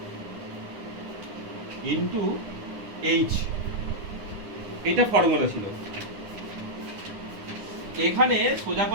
into h, এটা ফর্মুলা ছিল। এখানে সোজা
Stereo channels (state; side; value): late; left; 9.7 ms